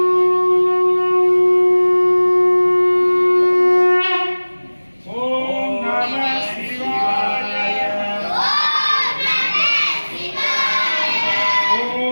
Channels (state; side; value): inverted; both; correlation -1.00